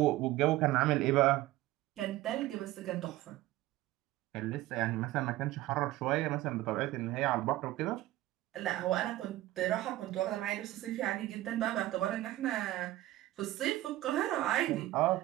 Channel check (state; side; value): quieter; left; 16.3 dB